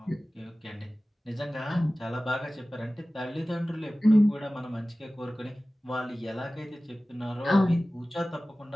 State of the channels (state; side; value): normal; both; correlation 0.97